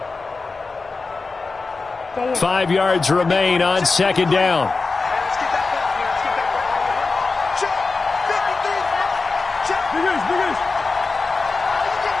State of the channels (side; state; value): right; quieter; 4.0 dB